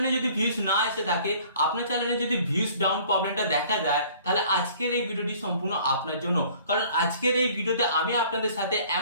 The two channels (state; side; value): inverted; both; correlation -0.53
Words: যদি ভিউজ না এসে থাকে, আপনার চ্যানেলে যদি ভিউজ ডাউন প্রবলেমটা দেখা যায়, তাহলে আজকের এই ভিডিওটি সম্পূর্ণ আপনার জন্য। কারণ আজকের এই ভিডিওতে আমি আপনাদের সাথে